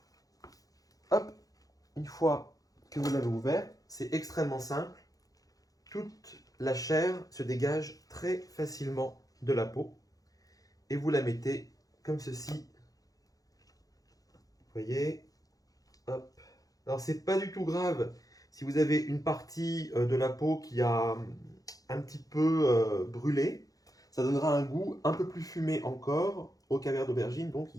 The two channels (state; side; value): late; right; 0.17 ms